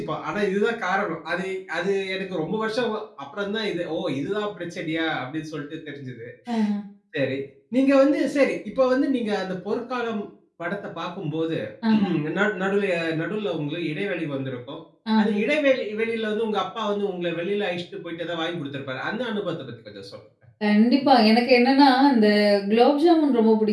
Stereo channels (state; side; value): identical; both; correlation 1.00